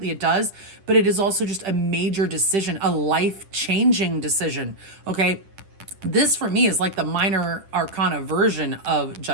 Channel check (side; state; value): left; late; 10 ms